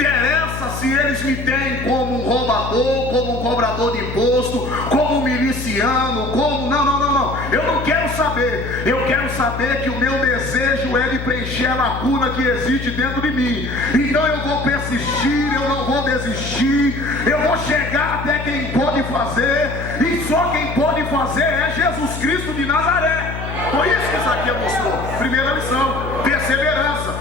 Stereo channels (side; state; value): left; noise; hum, 7 dB below the sound